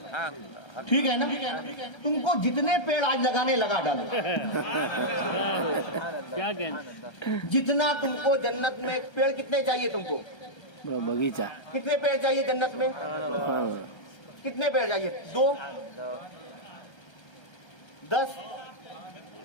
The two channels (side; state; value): right; late; 1.3 ms